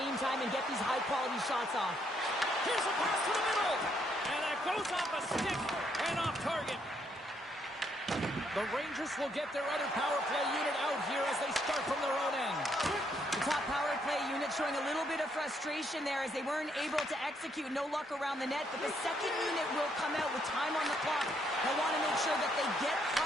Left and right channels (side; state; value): both; normal; correlation 0.73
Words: time and get these high-quality shots off. Here's a pass to the middle. And that goes off a stick and off target. The Rangers will get their other power play unit out here as they start from their own end. The top power play unit showing a little bit of frustration there as they weren't able to execute. No luck around the net, but the second unit will come out with time on the clock. They want to make sure that they get